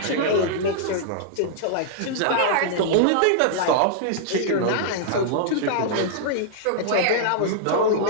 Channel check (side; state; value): both; different; correlation -0.01